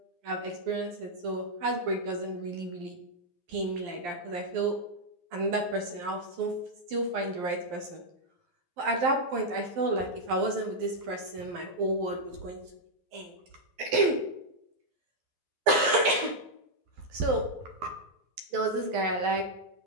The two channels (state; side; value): late; left; 12 ms